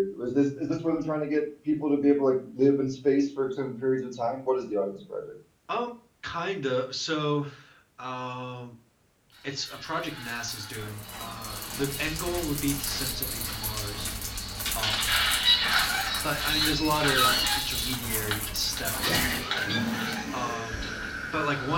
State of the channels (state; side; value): identical; both; correlation 1.00